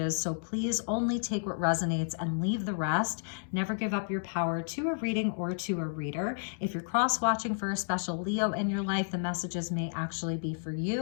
so please only take what resonates and leave the rest. Never give up your power to a reading or to a reader. If you're cross-watching for a special Leo in your life, the messages may actually be for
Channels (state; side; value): silent; right; digital silence